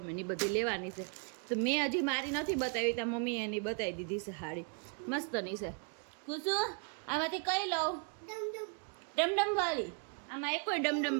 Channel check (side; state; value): left; quieter; 35.8 dB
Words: ની બધી લેવાની છે. તો મેં હજી મારી નથી બતાવી, ત્યાં મમ્મી એની બતાવી દીધી છે હાડી. મસ્તની છે. કુસુ આમાંથી કઈ લઉં? ડમડમ વાળી. આમાં એક કોઈ ડમડમ